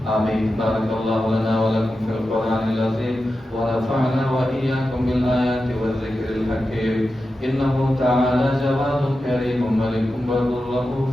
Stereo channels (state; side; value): normal; both; correlation 0.91